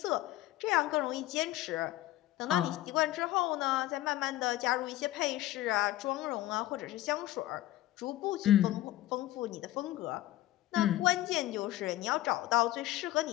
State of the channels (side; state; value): right; quieter; 15.4 dB